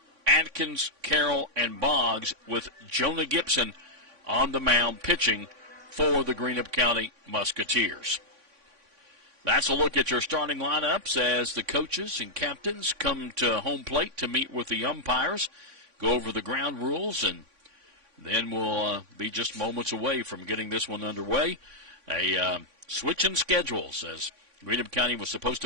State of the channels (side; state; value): left; late; 3.5 ms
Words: Atkins, Carroll, and Boggs, with Jonah Gibson on the mound pitching for the Greenup County Musketeers. That's a look at your starting lineups as the coaches and captains come to home plate to meet with the umpires, go over the ground rules, and then we'll be just moments away from getting this one underway. A switch in schedules, as Greenup County was supposed